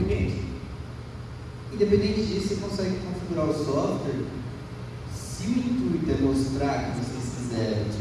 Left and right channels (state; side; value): identical; both; correlation 1.00